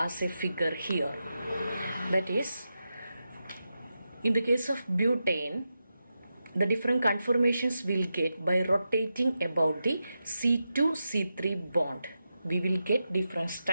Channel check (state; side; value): inverted; both; correlation -0.89